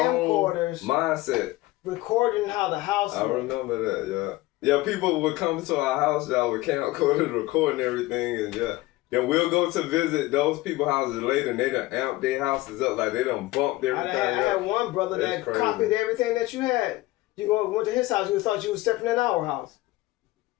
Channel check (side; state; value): right; quieter; 18.7 dB